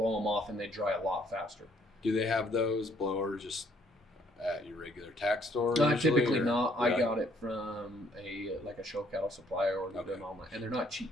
them off, and they dry a lot faster. Do they have those blowers just at your regular tack store? Typically not. I got it from a show cattle supplier or them online, and they're not cheap.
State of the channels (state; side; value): normal; both; correlation 0.65